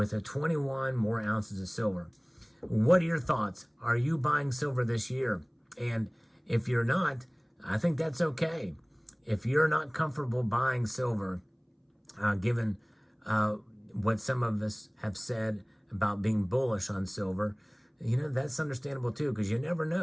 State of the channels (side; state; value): both; identical; correlation 1.00